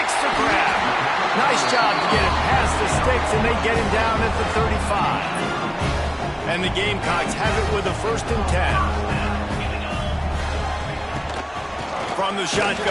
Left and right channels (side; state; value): both; identical; correlation 1.00